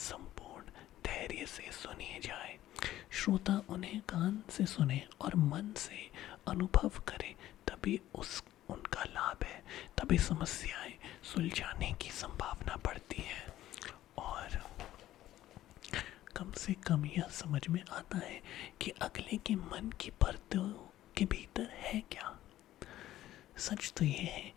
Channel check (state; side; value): quieter; right; 13.9 dB